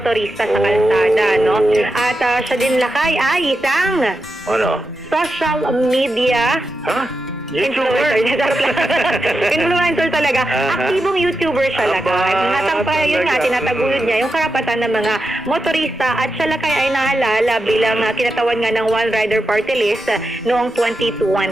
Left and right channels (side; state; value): both; normal; correlation 0.88